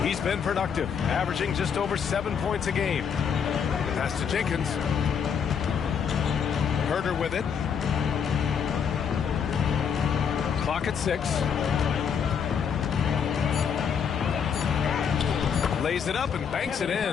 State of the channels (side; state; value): right; quieter; 7.1 dB